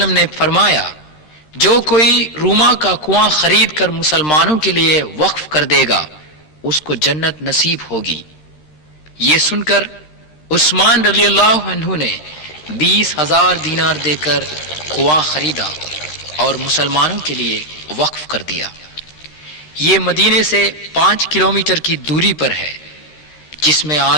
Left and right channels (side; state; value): right; late; 13 ms